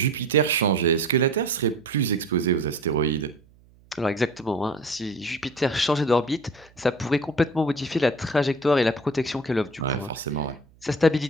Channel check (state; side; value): noise; right; hum, 29 dB below the sound